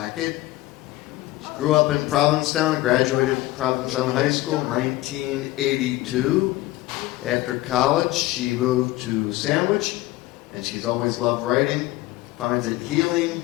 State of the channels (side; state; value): right; quieter; 17.6 dB